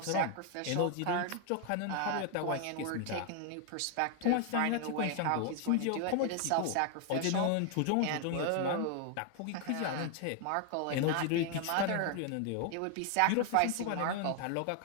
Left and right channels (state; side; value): different; both; correlation 0.00